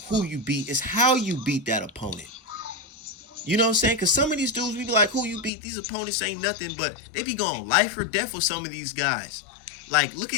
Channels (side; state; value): right; drops out; at 5.5 s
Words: who you beat. It's how you beat that opponent. You know what I'm saying? Because some of these dudes, we be like, who you beat? These opponents ain't nothing, but they be going life or death with some of these guys. Like, look